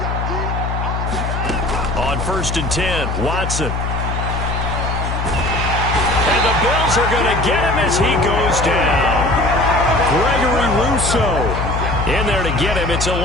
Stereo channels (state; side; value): noise; left; hum, 2 dB below the sound